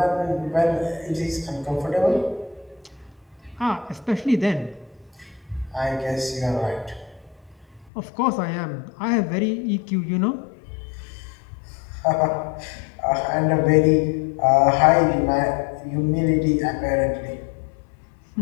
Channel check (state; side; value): drops out; right; at 7.9 s